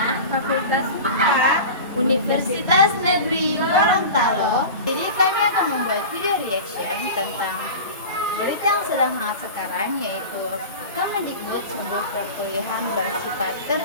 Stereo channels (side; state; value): both; inverted; correlation -0.32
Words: Fakultas IPA, Universitas Negeri Gorontalo. Jadi kami akan membuat video reaction tentang berita yang sedang hangat sekarang, yaitu Kemendikbud sebuah perkuliahan bersifat